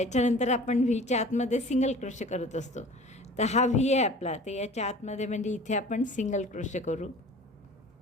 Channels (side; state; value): both; normal; correlation 0.43